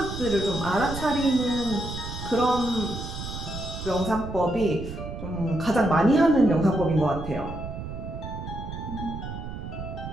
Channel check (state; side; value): noise; right; rumble, 8 dB below the sound